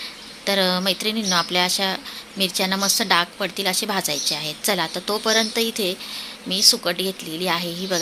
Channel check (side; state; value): both; identical; correlation 1.00